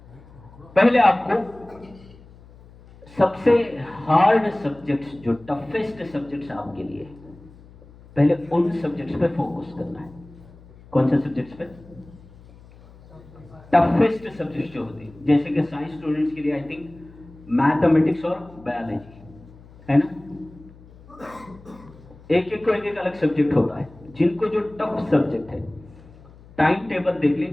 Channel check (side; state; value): left; noise; hum, 23 dB below the sound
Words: पहले आपको सबसे हार्ड सब्जेक्ट्स, जो टफेस्ट सब्जेक्ट्स आपके लिए, पहले उन सब्जेक्ट्स पे फोकस करना है। कौन से सब्जेक्ट्स पे, टफेस्ट सब्जेक्ट्स जो होते हैं, जैसे कि साइंस स्टूडेंट्स के लिए आई थिंक मैथमेटिक्स और बायोलॉजी है ना, एक एक अलग सब्जेक्ट होता है। जिनको जो टफ सब्जेक्ट है, टाइम टेबल देख